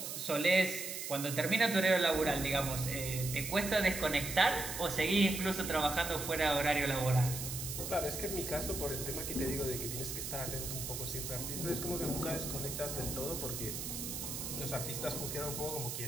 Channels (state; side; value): noise; right; hiss, 5 dB below the sound